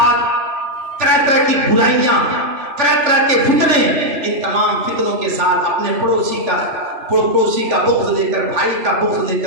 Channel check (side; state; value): left; late; 3.4 ms